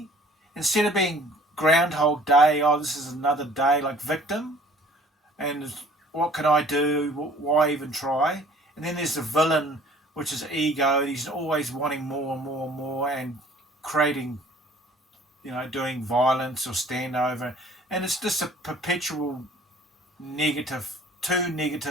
Instead of being Groundhog Day, oh, this is another day, like victim, and what can I do? Why even try? And then there's the villain, which is ego. He's always wanting more and more and more, and creating, doing violence or standover. And it's just a perpetual two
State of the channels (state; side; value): normal; both; correlation 0.52